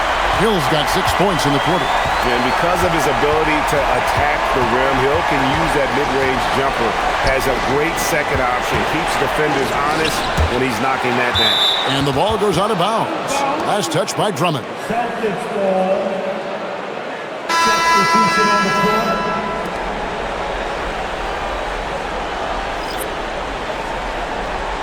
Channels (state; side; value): identical; both; correlation 1.00